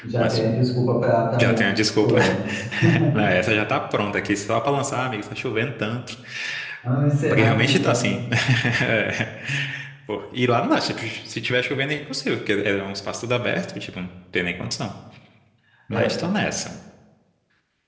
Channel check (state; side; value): identical; both; correlation 1.00